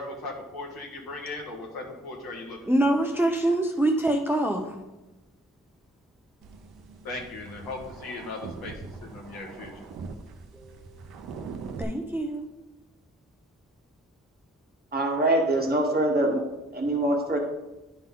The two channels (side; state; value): both; normal; correlation 0.57